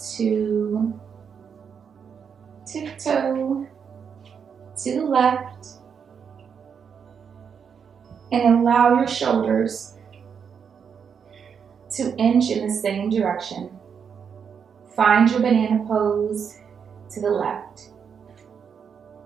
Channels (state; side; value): quieter; left; 6.9 dB